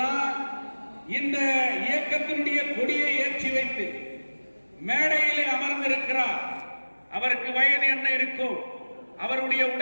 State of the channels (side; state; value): both; inverted; correlation -1.00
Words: இந்த இயக்கத்தினுடைய கொடியை ஏற்றி வைத்து மேடையிலே அமர்ந்திருக்கிறார். அவருக்கு வயது என்ன இருக்கும்? அவருடைய